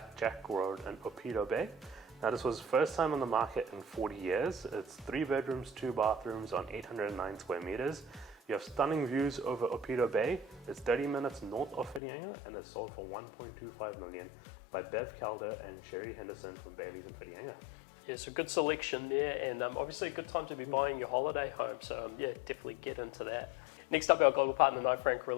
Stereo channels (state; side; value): drops out; right; at 12.0 s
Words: Road in Opito Bay. Now this was first time on the market in 40 years. It's 3 bedrooms, 2 bathrooms on 809 square meters. You have stunning views over Opito Bay. It's 30 minutes north of Whitianga, and it's sold for $1.25 million by Bev Calder and Sherry Henderson from Bayleys in Whitianga. Yeah, so good selection there, and obviously a good time to be buying your holiday home. So yeah, definitely get into that. Next up, our global partner Knight Frank